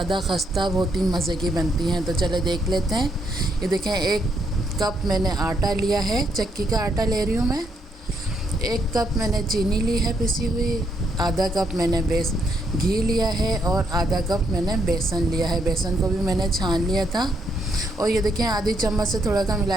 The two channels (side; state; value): both; normal; correlation 0.76